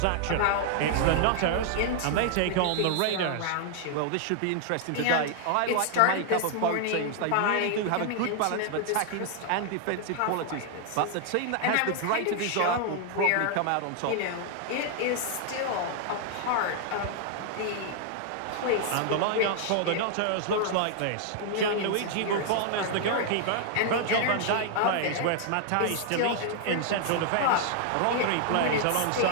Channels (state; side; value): different; both; correlation 0.00